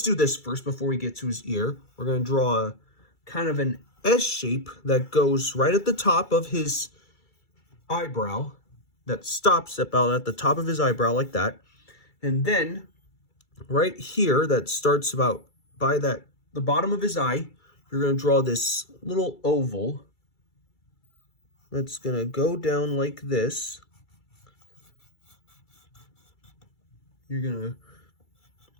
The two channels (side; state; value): right; late; 2.3 ms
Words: do this first before we get to his ear. We're going to draw a kind of an S shape that goes right at the top of his eyebrow, that stops about at the top of his eyebrow like that. And then right here, that starts about by the bottom of his eye, you're going to draw this little oval that's going to go down like this. You're going to